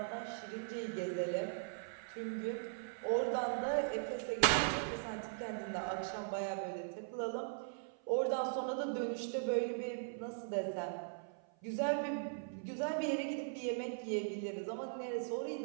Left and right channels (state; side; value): silent; left; 51 dB below the other